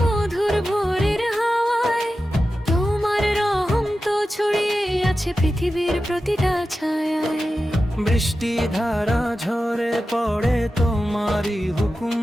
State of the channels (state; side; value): normal; both; correlation 0.93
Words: মধুর ভোরের হাওয়ায় তোমার রহম তো ছড়িয়ে আছে পৃথিবীর প্রতিটা ছায়ায়। বৃষ্টি ধারা ঝরে পড়ে তোমারই হুকুম